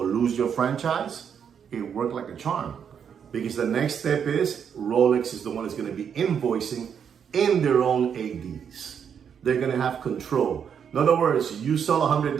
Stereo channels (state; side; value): quieter; left; 7.7 dB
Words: lose your franchise, it worked like a charm. Because the next step is Rolex is the one that's going to be invoicing in their own ADs. They're going to have control. In other words, you sell $100,000,